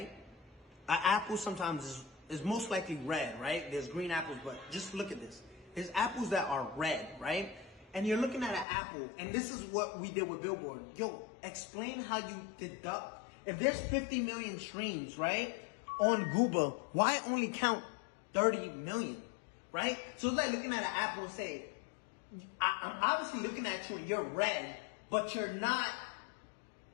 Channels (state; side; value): drops out; right; at 8.7 s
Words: An apple sometimes is most likely red, right? There's green apples, but just look at this. There's apples that are red, right? And you're looking at an apple, and this is what we did with Billboard. Yo, explain how you deduct. If there's 50 million streams, right, on Gooba, why only count 30 million, right? So it's like looking at an apple and say, I'm obviously looking at you and you're red, but you're not,